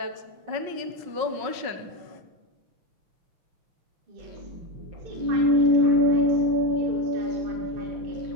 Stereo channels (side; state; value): left; late; 5.5 ms